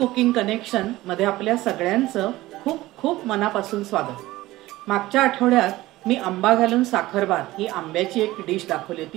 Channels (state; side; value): quieter; left; 17.6 dB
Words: connection मध्ये आपल्या सगळ्यांचं खूप खूप मनापासून स्वागत। मागच्या आठवड्यात मी आंबा घालून साखरभात ही आंब्याची एक डिश दाखवली